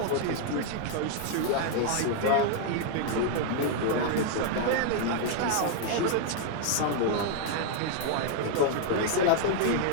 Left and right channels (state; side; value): different; both; correlation 0.00